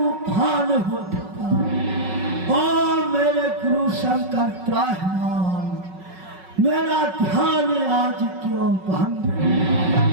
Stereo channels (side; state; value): left; late; 5.4 ms